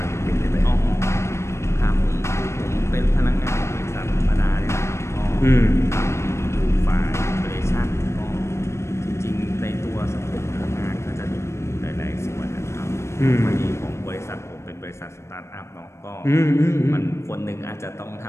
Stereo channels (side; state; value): right; late; 0.13 ms